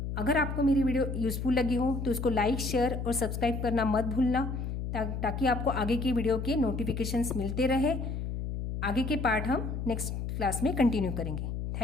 अगर आपको मेरी वीडियो यूज़फुल लगी हो तो इसको लाइक शेयर और सब्सक्राइब करना मत भूलना, ताकि आपको आगे की वीडियो के नोटिफिकेशंस मिलते रहे। आगे के पार्ट हम नेक्स्ट क्लास में कंटिन्यू करेंगे।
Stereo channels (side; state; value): left; noise; hum, 4 dB below the sound